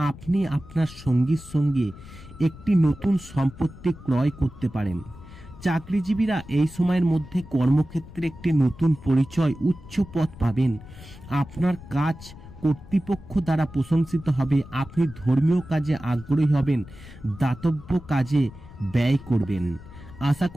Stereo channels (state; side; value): noise; left; rumble, 17 dB below the sound